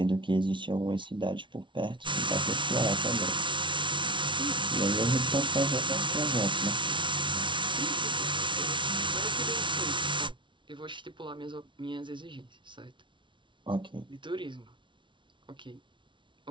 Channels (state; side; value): late; left; 0.24 ms